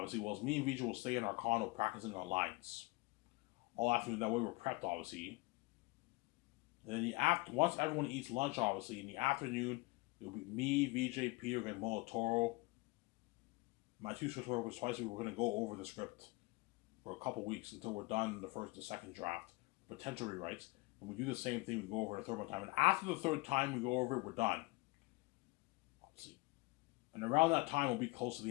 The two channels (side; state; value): right; quieter; 24.1 dB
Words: whilst me and VJ will stay in our condo practicing our lines all afternoon. That way we're prepped, obviously. And then once everyone eats lunch, obviously, in the afternoon, it'll be me, VJ, Peter, and Toro. My 2 script workers twice a week. We're going to go over the script for a couple weeks until we're done the second draft, potential rewrites. And we do the same thing. We go over it a third time. And after the third time we go over it, we're done. Obviously. And around that time, we'll be close to